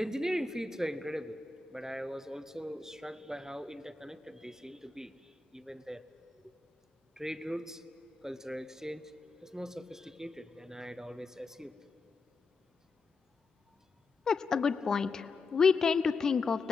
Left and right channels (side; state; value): right; quieter; 4.1 dB